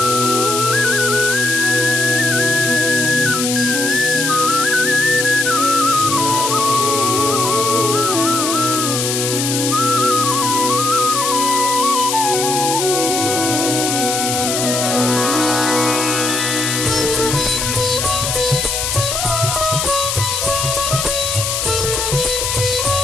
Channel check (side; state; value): left; noise; hiss, 1 dB below the sound